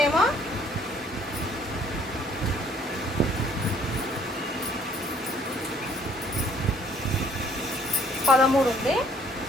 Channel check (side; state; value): both; normal; correlation 0.61